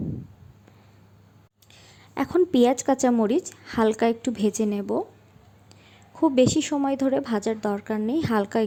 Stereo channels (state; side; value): identical; both; correlation 1.00